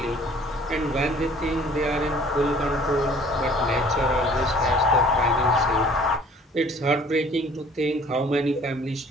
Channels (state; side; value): normal; both; correlation 0.53